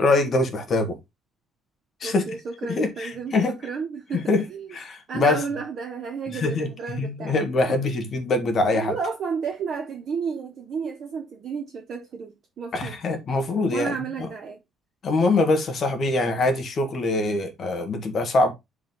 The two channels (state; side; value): normal; both; correlation 0.64